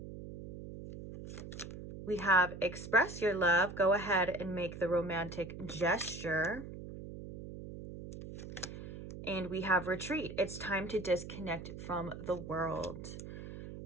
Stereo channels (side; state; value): right; noise; hum, 11 dB below the sound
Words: We have express your love. Go ahead and make the romantic gesture. And we have retreat. It's time to disconnect from the world.